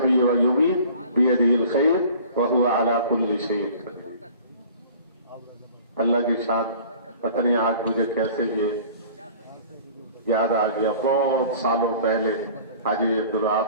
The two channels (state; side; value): inverted; both; correlation -0.47